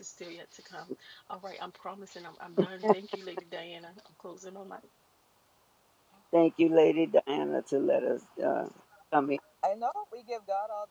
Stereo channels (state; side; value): identical; both; correlation 1.00